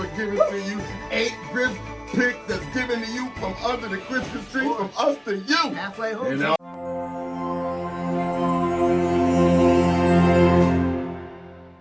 given to you. 8 gift picks that's given to you from under the Christmas tree, from us to you. Halfway home.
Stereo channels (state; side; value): identical; both; correlation 1.00